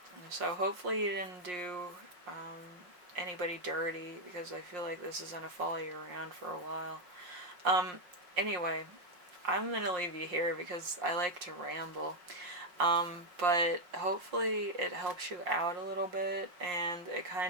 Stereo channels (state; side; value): late; left; 5.6 ms